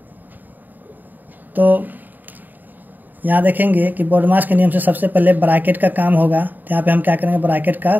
तो यहाँ देखेंगे कि बोर्डमास के नियम से सबसे पहले ब्रैकेट का काम होगा। तो यहाँ पे हम क्या करेंगे, ब्रैकेट का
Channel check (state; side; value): late; left; 0.087 ms